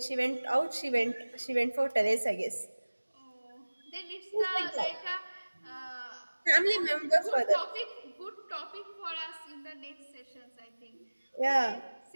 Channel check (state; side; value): inverted; both; correlation -1.00